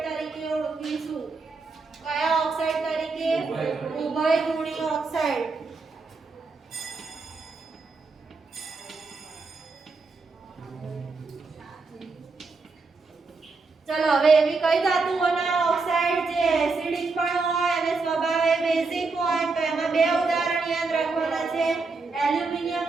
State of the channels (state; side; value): quieter; left; 4.1 dB